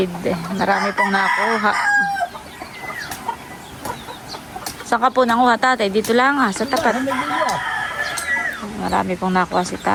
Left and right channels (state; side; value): identical; both; correlation 1.00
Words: Marami pong nakuha. Saan ka po nanguha, tatay? Dito lang sa tapat. Marami pong nakuha si